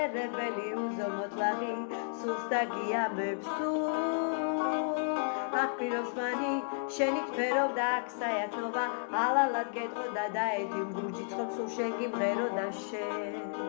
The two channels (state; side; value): silent; right; digital silence